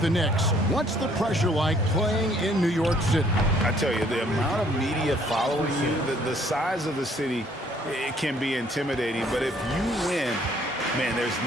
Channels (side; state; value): both; normal; correlation 0.62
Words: the Knicks, what's the pressure like playing in New York City? I tell you, the amount of media following you, the size of the city, it can be intimidating. But if you win, man, there's